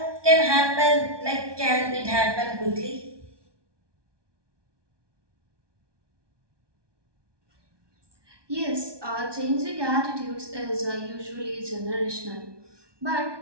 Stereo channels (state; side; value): late; left; 1.2 ms